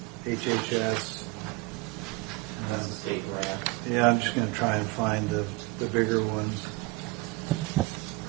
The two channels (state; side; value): quieter; left; 24.0 dB